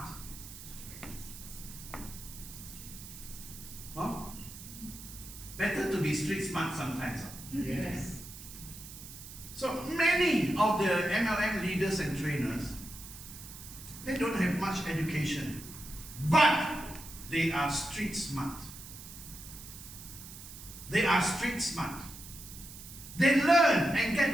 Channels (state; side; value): noise; right; hiss, 14 dB below the sound